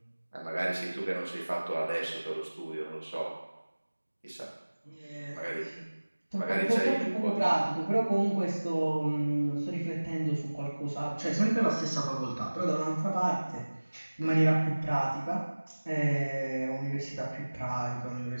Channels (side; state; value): both; inverted; correlation -1.00